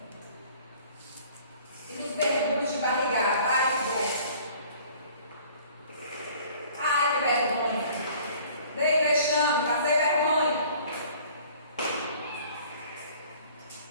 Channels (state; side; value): inverted; both; correlation -0.52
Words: E nos mergulhos de barrigada? Ai, que bom! Ai, que vergonha! Dei vexame, passei vergonha.